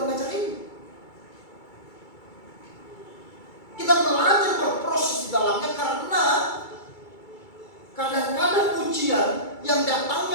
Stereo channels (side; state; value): right; late; 2.3 ms